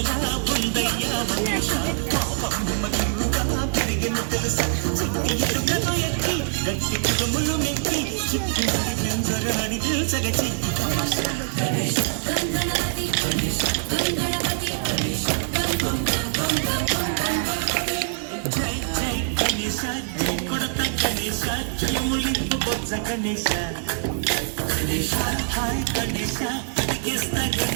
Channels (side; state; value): left; silent; digital silence